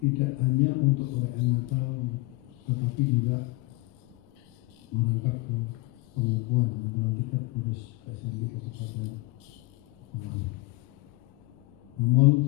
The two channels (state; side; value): quieter; right; 22.1 dB